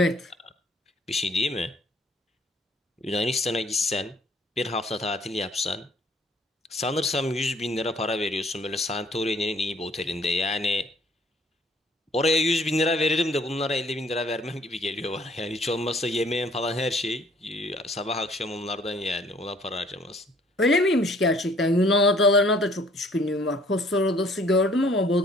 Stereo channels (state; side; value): normal; both; correlation 0.59